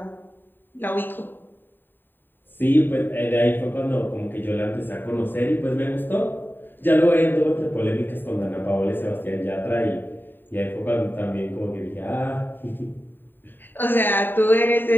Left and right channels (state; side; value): late; right; 0.093 ms